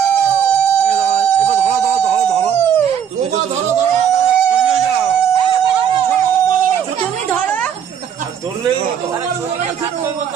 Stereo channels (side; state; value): left; quieter; 8.4 dB